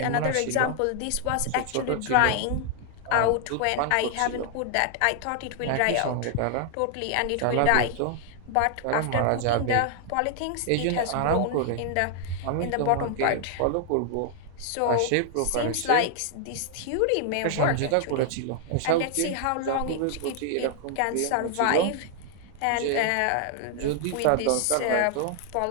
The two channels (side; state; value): both; different; correlation 0.00